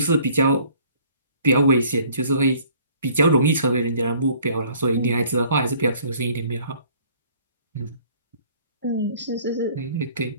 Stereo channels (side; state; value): both; inverted; correlation -0.56